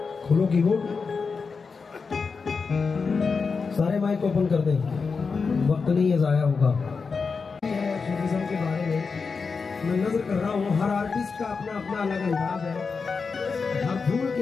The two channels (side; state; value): right; quieter; 5.0 dB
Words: खुलो कीबोर्ड, सारे माइक ओपन कर दें, वक्त नहीं है ज़ाया होगा। सूफीज़्म के बारे में मैं नजर कर रहा हूँ, हर आर्टिस्ट का अपना अपना अलग अंदाज है, हर धूल